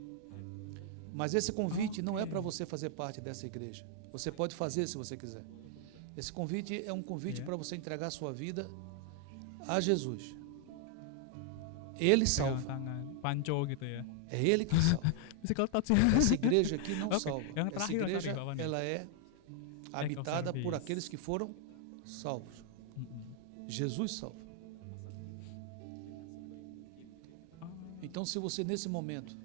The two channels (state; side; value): different; both; correlation 0.00